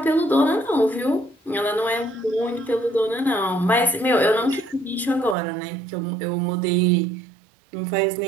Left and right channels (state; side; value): drops out; left; at 5.4 s